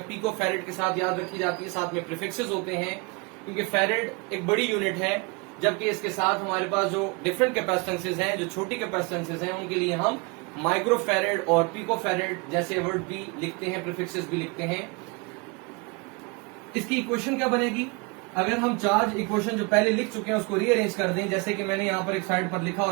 पिको फैरेड के साथ याद रखी जाती है, साथ में प्रीफिक्सेस होते हैं, क्योंकि फैरेड एक बड़ी यूनिट है, जबकि इसके साथ हमारे पास जो डिफरेंट कैपेसिटेंसेज हैं, जो छोटी कैपेसिटेंसेज हैं, उनके लिए हम माइक्रो फैरेड और पिको फैरेड जैसे वर्ड भी लिखते हैं, प्रीफिक्सेस भी लिखते हैं। इसकी इक्वेशन क्या बनेगी? अगर हम चार्ज इक्वेशन जो पहले लिख चुके हैं उसको रीअरेंज कर दें, जैसे कि मैंने यहां पर एक साइड पर लिखा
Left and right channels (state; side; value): quieter; left; 28.5 dB